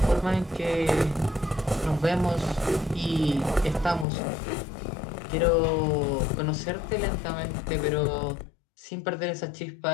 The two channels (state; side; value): drops out; right; at 4.0 s